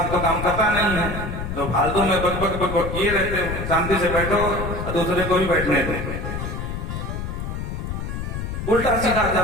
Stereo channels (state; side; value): noise; left; rumble, 5 dB below the sound